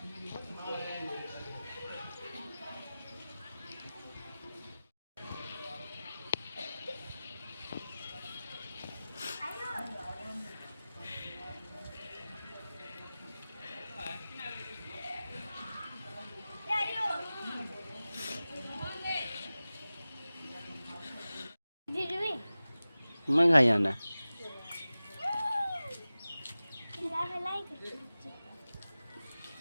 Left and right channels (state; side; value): inverted; both; correlation -0.96